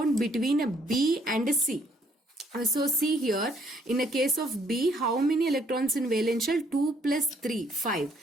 between a B and a C. So see here, in the case of B, how many electrons in valence shell? 2 plus 3,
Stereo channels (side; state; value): both; normal; correlation 0.66